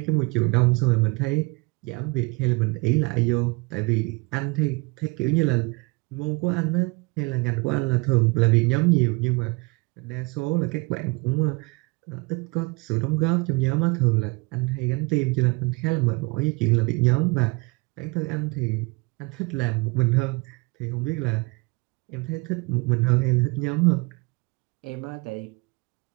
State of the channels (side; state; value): left; quieter; 27.4 dB